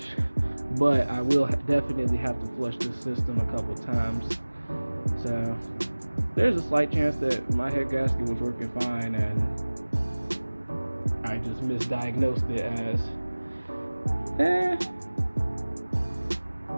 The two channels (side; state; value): both; inverted; correlation -1.00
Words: but I will definitely have to flush this system a couple times. So there's a slight chance that my head gasket was working fine and I just misdiagnosed it as